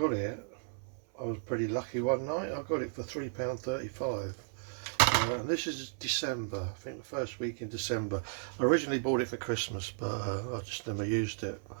it, I was pretty lucky one night, I got it for £3.35. And this is December, I think the first week in December. I originally bought it for Christmas, but I just never used it.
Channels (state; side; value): silent; left; 55 dB below the other